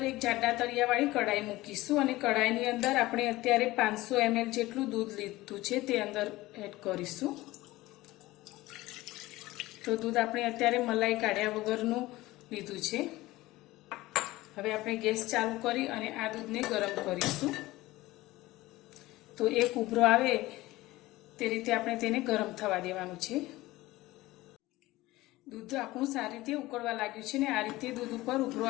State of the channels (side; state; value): right; quieter; 18.5 dB